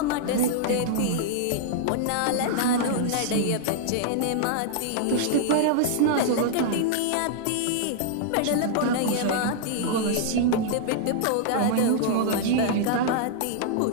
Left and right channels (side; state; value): both; different; correlation -0.01